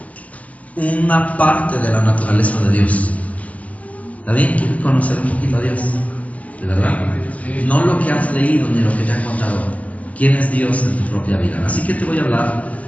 una parte de la naturaleza de Dios. ¿Está bien? ¿Quieres conocer un poquito a Dios? ¿De verdad? No lo que has leído ni lo que te han contado. ¿Quién es Dios en tu propia vida? Así que te voy a hablar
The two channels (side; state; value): right; late; 0.067 ms